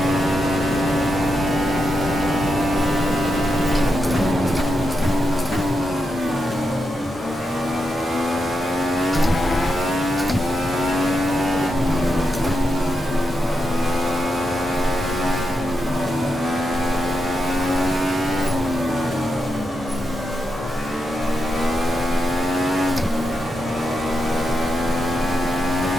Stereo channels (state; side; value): normal; both; correlation 0.86